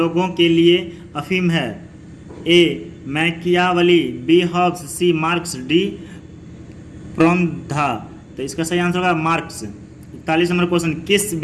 के लिए अफीम है? ए मैकियावली, बी हॉब्स, सी मार्क्स, डी प्रोमधा। तो इसका सही आंसर होगा मार्क्स। 41 नंबर क्वेश्चन, किस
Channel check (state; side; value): identical; both; correlation 1.00